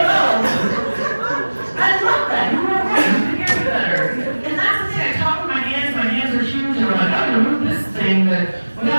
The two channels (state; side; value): inverted; both; correlation -1.00